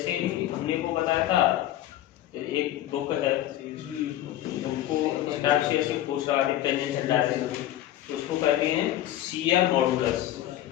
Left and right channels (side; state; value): right; quieter; 13.4 dB